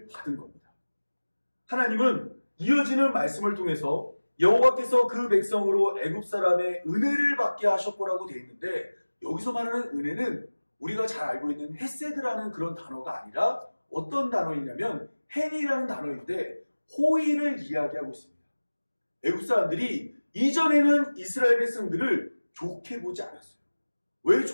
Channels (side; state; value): both; inverted; correlation -1.00